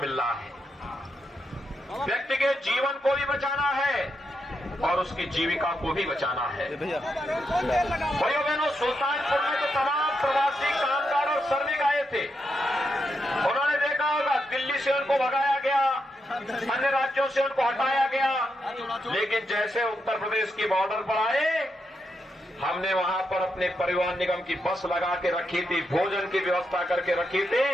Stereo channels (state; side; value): normal; both; correlation 0.83